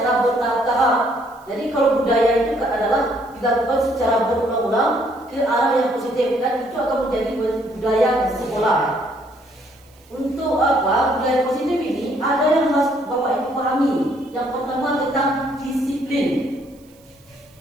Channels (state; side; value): noise; right; hiss, 30 dB below the sound